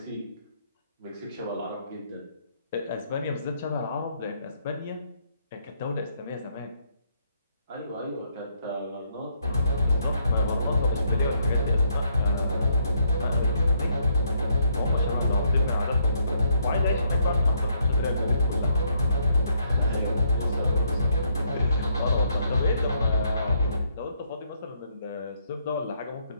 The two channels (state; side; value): inverted; both; correlation -0.72